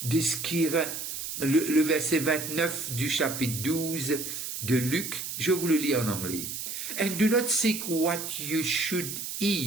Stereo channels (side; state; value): right; noise; hiss, 6 dB below the sound